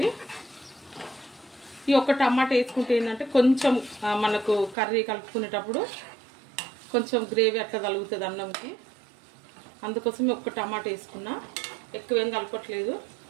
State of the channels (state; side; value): drops out; left; at 4.8 s